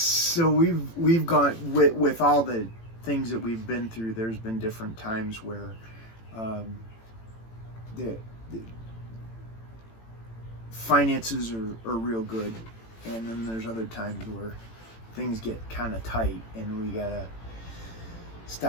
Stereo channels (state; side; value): late; right; 18 ms